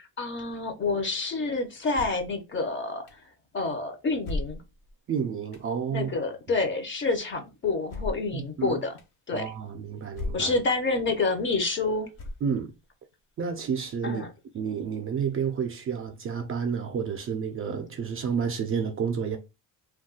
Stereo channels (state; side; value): normal; both; correlation 0.08